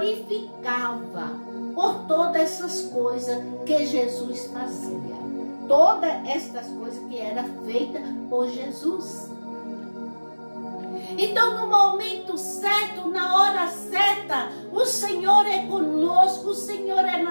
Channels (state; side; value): inverted; both; correlation -1.00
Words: por todas essas coisas que Jesus fazia. Todas estas coisas que eram feitas por Jesus. Então, no momento certo, na hora certa, o Senhor é conosco, o Senhor é